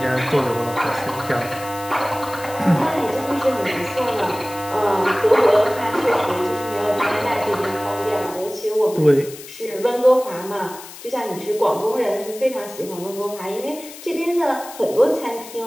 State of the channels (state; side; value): noise; left; hiss, 15 dB below the sound